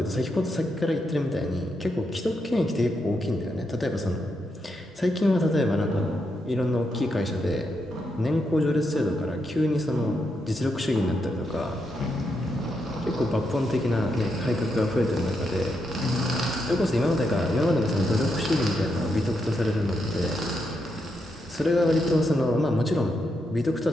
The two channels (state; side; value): normal; both; correlation 0.82